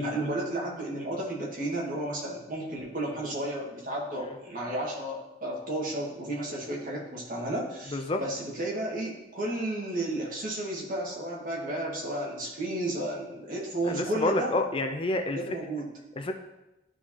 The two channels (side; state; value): both; normal; correlation 0.39